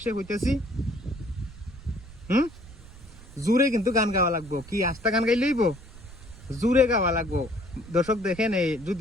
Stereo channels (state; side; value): noise; right; rumble, 18 dB below the sound